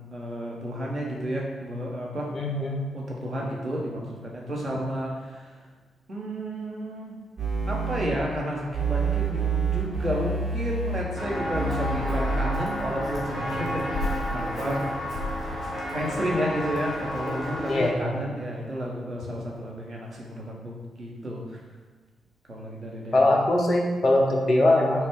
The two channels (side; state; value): both; normal; correlation 0.80